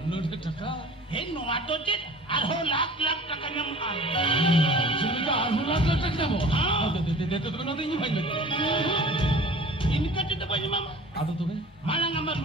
नोट टका हे नोआतो चेत आरो लाख टका नम चिका आरो लाख टका नम हां दे तो ना नहीं भाई इनका चेत बनी मामा आदो तो है माlang ama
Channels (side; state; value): both; normal; correlation 0.44